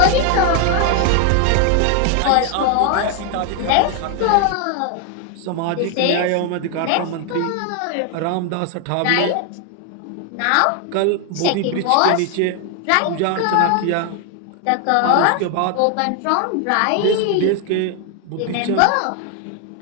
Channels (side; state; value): both; different; correlation 0.00